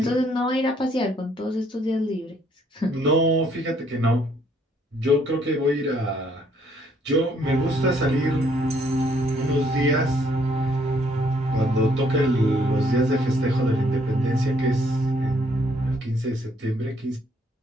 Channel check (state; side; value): normal; both; correlation 0.67